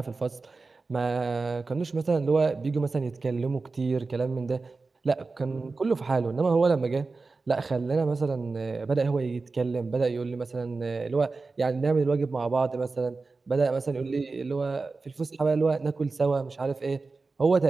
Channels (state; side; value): quieter; left; 3.9 dB